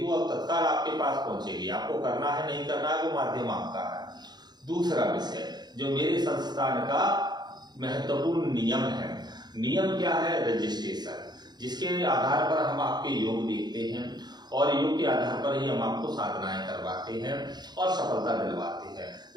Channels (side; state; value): left; late; 0.20 ms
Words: वो अब तत्काल आपके पास पहुंचेगी। आपको करना है नहीं करना है वो माध्यम आपका है। दूसरा विषय जो मेरे संस्थान का महत्वपूर्ण नियम है, नियम क्या है? रजिस्ट्रेशन, जिसके आधार पर हम आपके योग देखते हैं और योग के आधार पर ही हम आपको साधनाएं करवाते हैं और सफलता दिलवाते हैं।